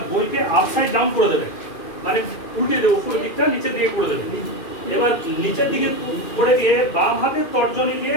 বইকে আপসাইড ডাউন করে দেবে, মানে উল্টে দেবে, উপরের দিকটা নিচের দিকে করে দেবে। এবার নিচের দিকে করে দিয়ে বাম হাতের তর্জনী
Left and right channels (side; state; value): right; late; 2.5 ms